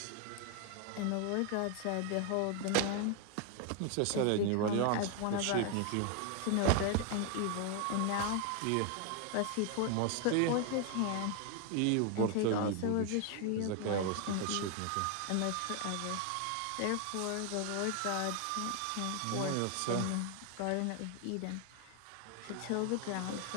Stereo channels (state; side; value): different; both; correlation 0.00